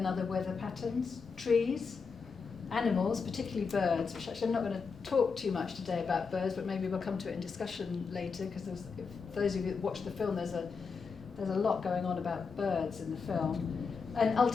other weather patterns, trees, animals, particularly birds, which actually I'm not going to talk too much today about birds, but maybe we'll come to it in discussion later, because for those of you that watch the film, there's a lot going on about birds in the film, and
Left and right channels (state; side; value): quieter; right; 5.2 dB